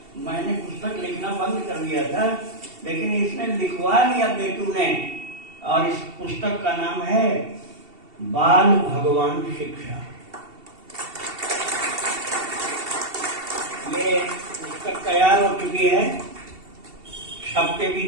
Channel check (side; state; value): left; late; 2.7 ms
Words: मैंने पुस्तक लिखना बंद कर दिया था, लेकिन इसने लिखवा लिया बेटू ने। और इस पुस्तक का नाम है बाल भगवान शिक्षा। ये पुस्तक तैयार हो चुकी है, छप के भी